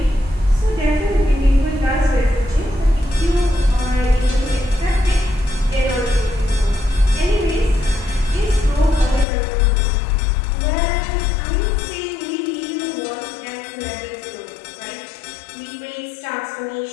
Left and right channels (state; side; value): drops out; right; at 9.2 s